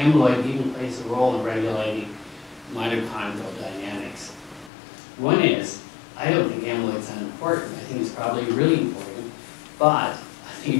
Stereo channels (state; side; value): drops out; right; at 4.7 s